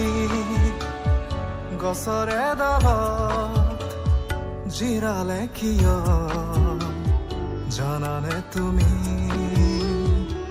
গছৰে ডালত জিৰালে কিয় জানানে তুমি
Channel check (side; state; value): both; identical; correlation 1.00